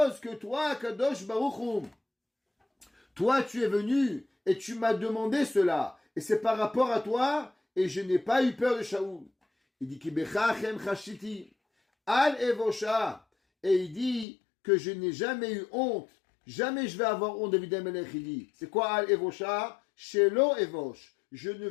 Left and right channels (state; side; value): drops out; right; at 14.2 s